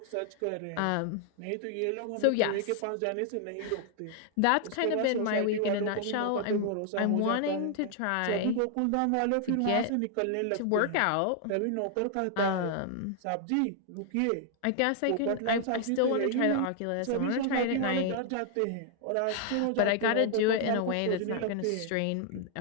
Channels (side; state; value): both; different; correlation 0.00